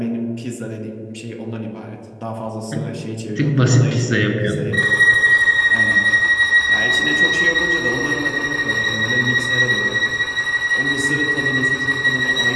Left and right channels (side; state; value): both; identical; correlation 1.00